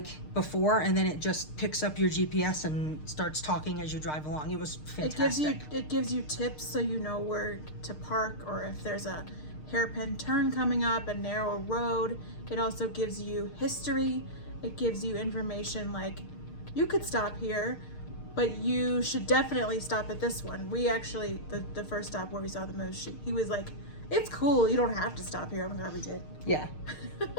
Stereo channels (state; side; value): late; right; 6.6 ms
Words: before, and then it just picks up your GPS and starts talking as you drive along. It was fantastic. It gives you tips so you know where to park, or if there's a hairpin turn coming up, a narrow road. It also gives you history. It gives you information like, you could stop here, but you should definitely stop at this one. We actually, the first stop where we saw the moose, he was like, it's cool, you don't have to stop here. I'm glad we did. Yeah.